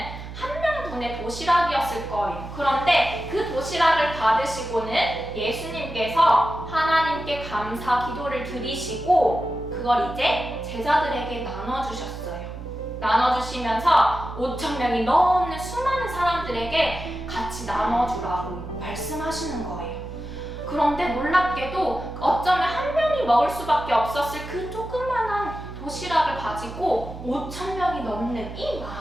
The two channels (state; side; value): noise; right; hum, 11 dB below the sound